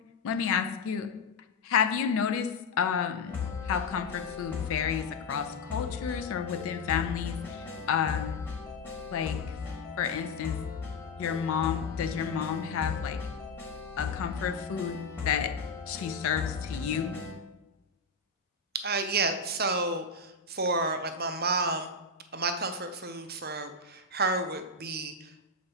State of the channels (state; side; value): quieter; right; 3.7 dB